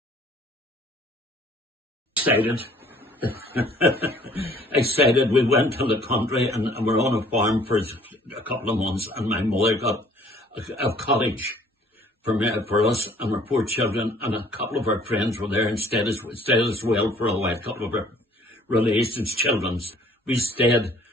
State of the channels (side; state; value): both; normal; correlation 0.57